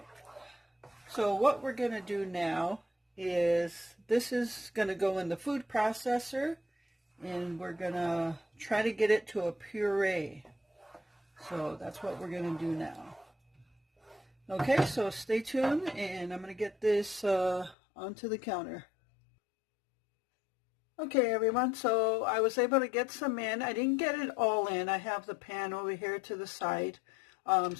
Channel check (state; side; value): drops out; right; at 17.8 s